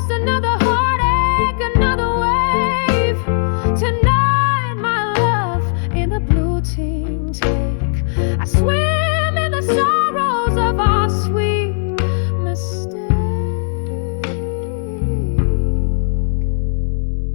another heartache, another wave? Tonight, my love, in the blue team take, I swim in the sorrows of our sweet mistake.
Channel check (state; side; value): silent; right; digital silence